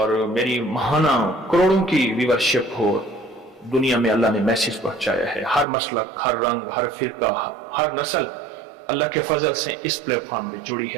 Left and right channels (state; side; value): drops out; left; at 5.7 s